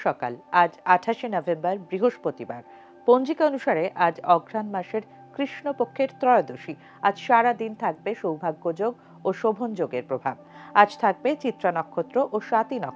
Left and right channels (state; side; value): identical; both; correlation 1.00